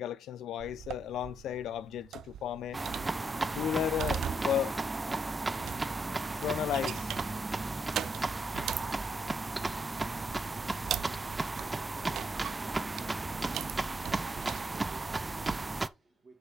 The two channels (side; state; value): both; normal; correlation 0.79